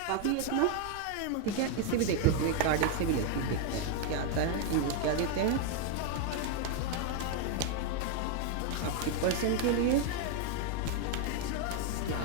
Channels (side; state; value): both; different; correlation 0.01